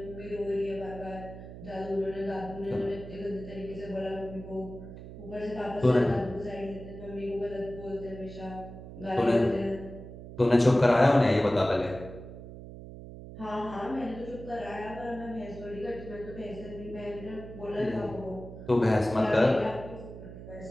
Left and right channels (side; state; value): right; noise; hum, 13 dB below the sound